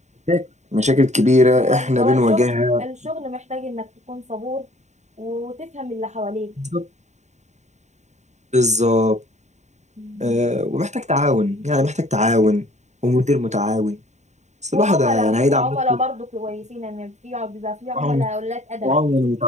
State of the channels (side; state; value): left; late; 0.34 ms